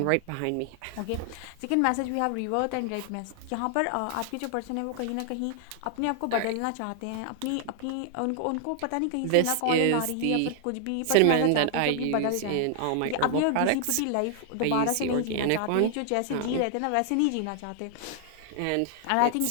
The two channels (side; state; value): both; different; correlation 0.00